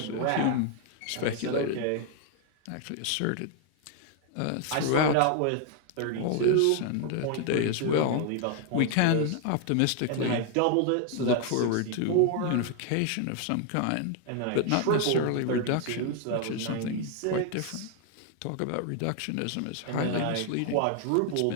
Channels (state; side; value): different; both; correlation 0.00